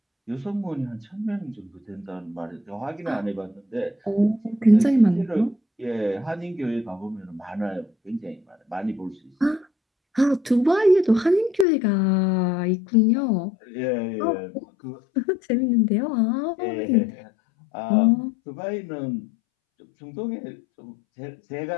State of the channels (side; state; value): right; drops out; at 11.7 s